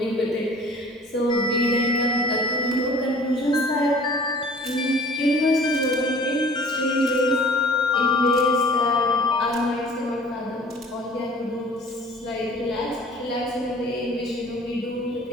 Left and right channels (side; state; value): both; normal; correlation 0.48